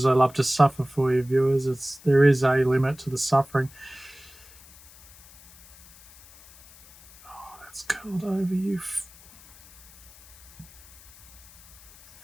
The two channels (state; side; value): noise; left; hiss, 23 dB below the sound